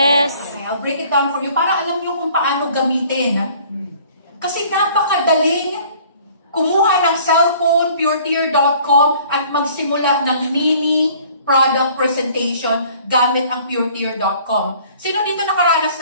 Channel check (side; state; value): both; inverted; correlation -0.54